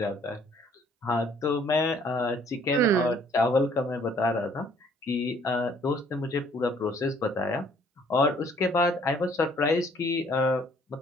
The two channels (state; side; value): normal; both; correlation 0.60